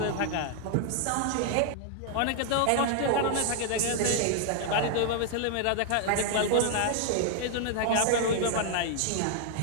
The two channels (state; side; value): different; both; correlation 0.00